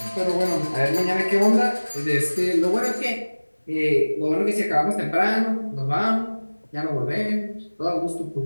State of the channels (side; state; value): both; inverted; correlation -1.00